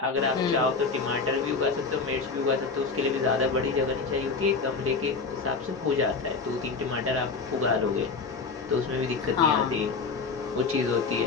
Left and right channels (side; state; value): right; quieter; 4.6 dB